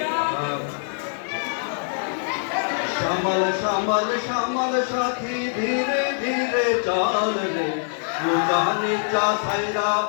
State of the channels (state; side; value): silent; right; 63 dB below the other